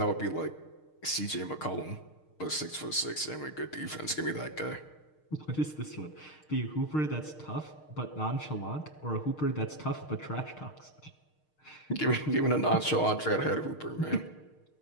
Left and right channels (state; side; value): late; right; 6.5 ms